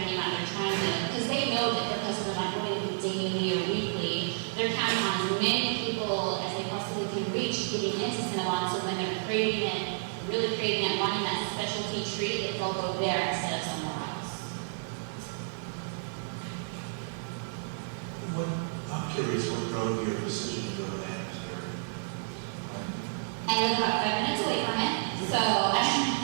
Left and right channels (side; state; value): left; silent; 57 dB below the other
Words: their name out. They're trying to, because they know that their customers aren't going to be daily or weekly. They're counting on as many people as they possibly can reach getting into Cinnabon, so when they're craving it, really craving it, wanting that specialty treat, they'll go there instead of somewhere else. I'm curious what drove your decision to go to Amsterdam? I live about 5 minutes away from it, so